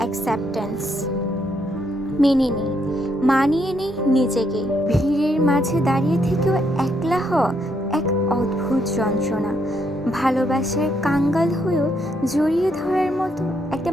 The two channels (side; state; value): both; normal; correlation 0.75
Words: মেনে নিই, মানিয়ে নিই নিজেকে। ভিড়ের মাঝে দাঁড়িয়ে থেকেও একলা হওয়া এক অদ্ভুত যন্ত্রণা। ভালোবাসার কাঙ্গাল হয়েও জড়িয়ে ধরার মতো একটা